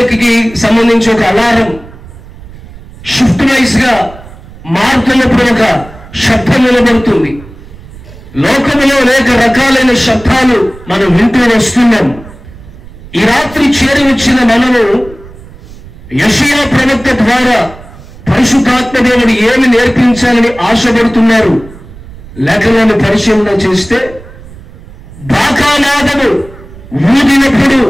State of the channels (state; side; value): noise; right; rumble, 18 dB below the sound